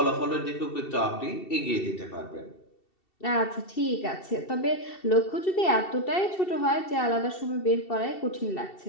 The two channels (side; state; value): right; late; 2.7 ms